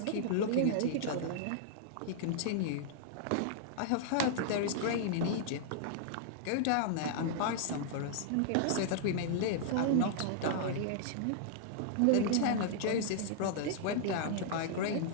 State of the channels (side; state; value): both; different; correlation -0.01